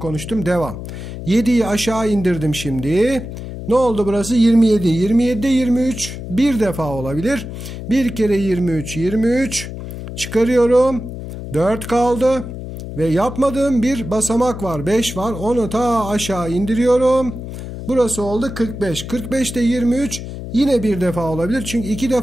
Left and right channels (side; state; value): left; noise; hum, 9 dB below the sound